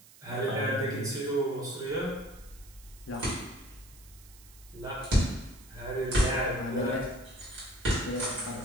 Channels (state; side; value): noise; right; hiss, 22 dB below the sound